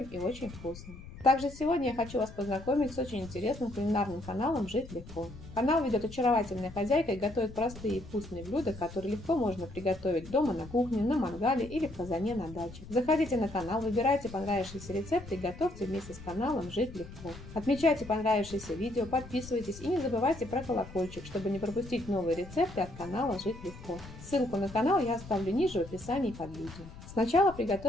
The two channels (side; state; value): left; noise; rumble, 15 dB below the sound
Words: и очень вкусным. Также сегодня я хочу вас познакомить с очень интересным кулинарным каналом «Жить легко». Канал ведет очаровательная хозяйка и готовит простые и вкусные блюда, которые легко можно приготовить дома на кухне, на мангале или в казане на даче. Заходите на канал, выбирайте понравившиеся рецепты и готовьте вместе с каналом «Жить легко». Отмечайте понравившиеся видео, подписывайтесь и не забывайте про колокольчик, чтобы не пропустить новые рецепты от канала «Жить легко». Ссылку на канал я оставлю ниже в описании под видео. Сначала